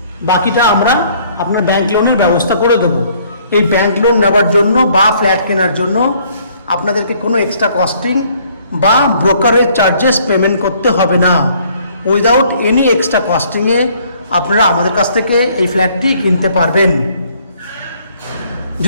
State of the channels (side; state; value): both; inverted; correlation -0.62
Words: বাকিটা আমরা আপনার ব্যাংক লোনের ব্যবস্থা করে দেবো। এই ব্যাংক লোন নেওয়ার জন্য বা ফ্ল্যাট কেনার জন্য আপনাদেরকে কোনো এক্সট্রা কস্টিং বা ব্রোকারেজ চার্জেস পেমেন্ট করতে হবে না। উইদাউট এনি এক্সট্রা কস্টিংয়ে আপনারা আমাদের কাছ থেকে এই ফ্ল্যাটটি কিনতে পারবেন।